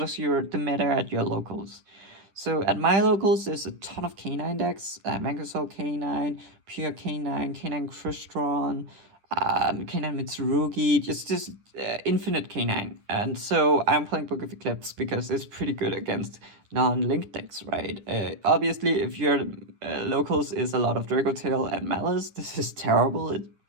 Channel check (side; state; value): left; late; 10 ms